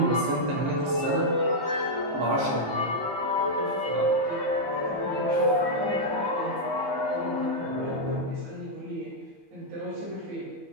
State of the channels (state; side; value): late; left; 15 ms